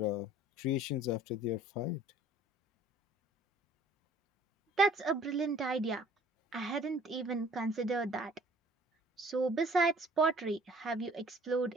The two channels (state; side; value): normal; both; correlation 0.53